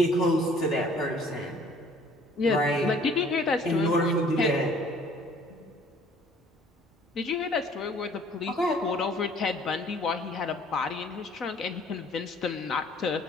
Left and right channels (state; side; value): normal; both; correlation 0.55